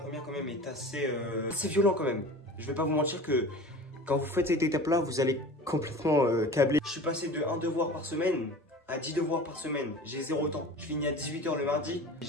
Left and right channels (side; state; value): both; normal; correlation 0.38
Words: quand même est assez violent quand même. Je vais pas vous mentir que quand vous faites cette étape là, vous allez complètement câbler. Je suis passé de 1 devoir par semaine à 10 devoirs par semaine, j'ai 0 temps. Je finis à 18 h le mardi,